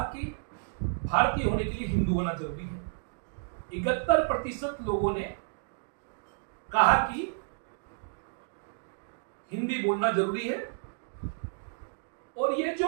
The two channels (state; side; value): silent; left; digital silence